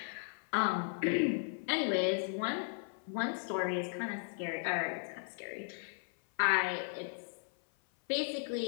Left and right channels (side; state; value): right; silent; 54 dB below the other